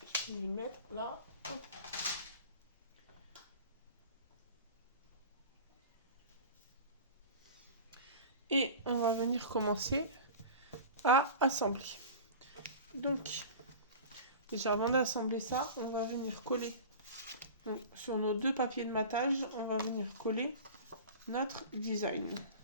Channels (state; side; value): inverted; both; correlation -0.35